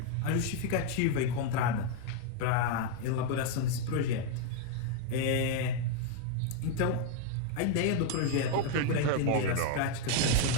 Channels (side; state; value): both; different; correlation 0.00